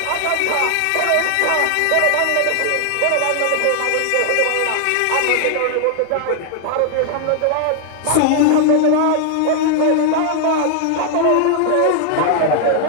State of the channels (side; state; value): both; different; correlation 0.00